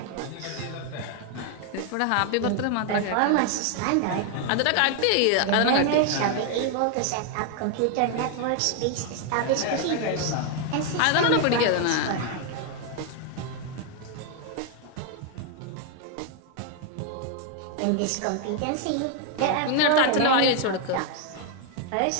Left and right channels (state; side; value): different; both; correlation 0.00